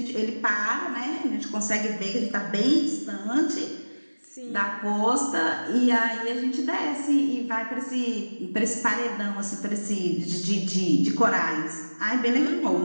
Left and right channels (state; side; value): inverted; both; correlation -1.00